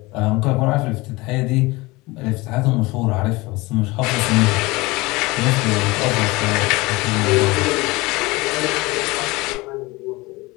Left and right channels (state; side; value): quieter; right; 22.3 dB